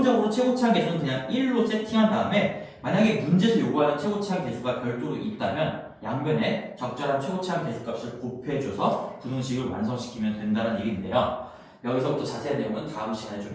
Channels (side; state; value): both; identical; correlation 1.00